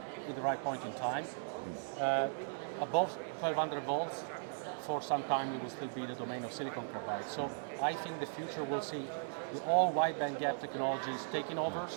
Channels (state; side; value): silent; left; digital silence